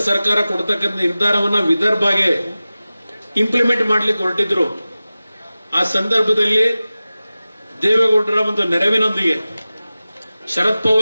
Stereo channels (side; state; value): both; inverted; correlation -0.96